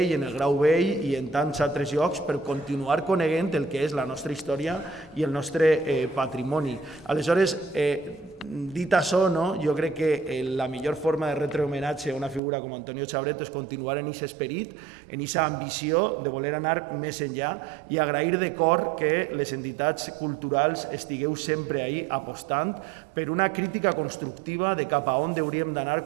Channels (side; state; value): left; drops out; at 12.4 s